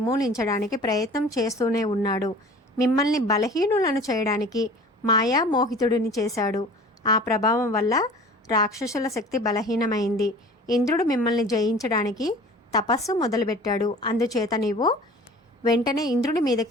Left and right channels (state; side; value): normal; both; correlation 0.44